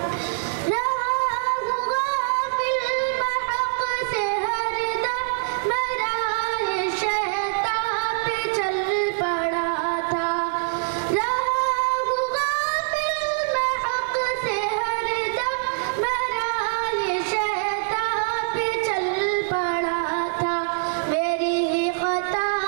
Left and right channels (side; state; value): left; silent; digital silence